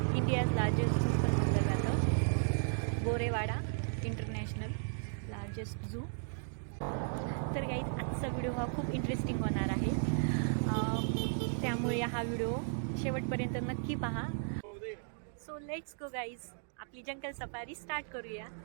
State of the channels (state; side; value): silent; left; digital silence